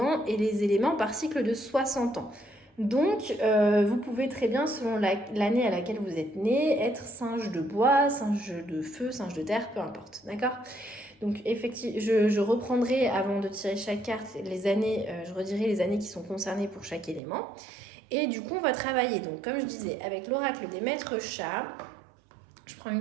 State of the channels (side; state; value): left; drops out; at 17.2 s